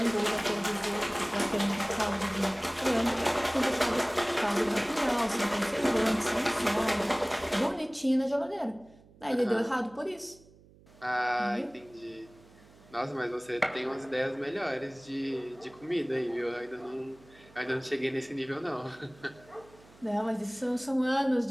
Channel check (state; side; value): noise; right; hum, 25 dB below the sound